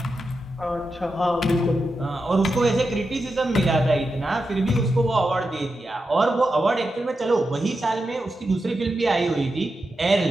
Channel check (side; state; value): both; normal; correlation 0.88